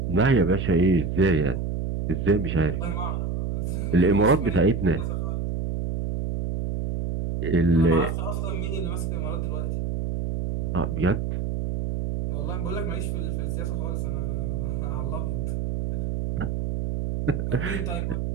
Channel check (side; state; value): right; noise; hum, 1 dB below the sound